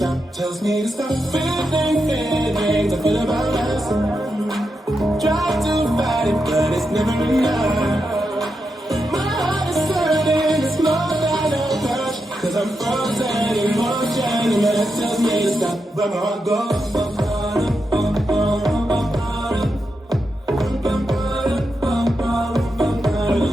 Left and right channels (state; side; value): normal; both; correlation 0.86